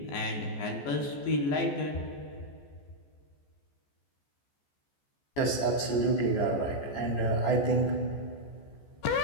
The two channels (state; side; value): late; right; 14 ms